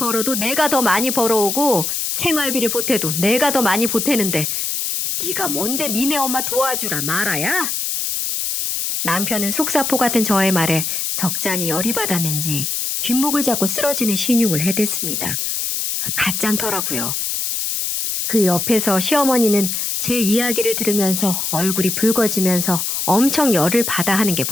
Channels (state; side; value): noise; left; hiss, 1 dB below the sound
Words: 내가 더 많이 벌어오고 생활비를 보태도 내가 더 많이 보태는데 네가 뭔데 니네 엄마 도와주라 말아야? 남편은 속사포 같은 저의 말에 적잖이 열이 받았는지 뒷목을 잡고 쓰러지는 신용을 해댔습니다. 가짠더라고요. 그 옆에서 시어머니는 제 이야기를 들으면서 얼굴이 붉어지면서 엄청 열을 받아 하는 게